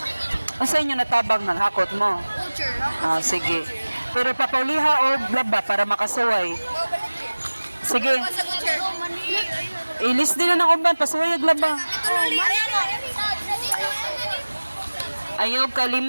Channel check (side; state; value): both; inverted; correlation -1.00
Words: Unsa inyo natabang nang hakot mo? Ah, sige. Pero papauliha og laba para makasuway. Sige. Ilis din na ng uban, pasuway og laba. Ayaw